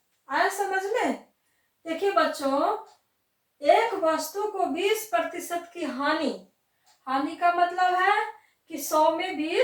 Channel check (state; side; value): identical; both; correlation 1.00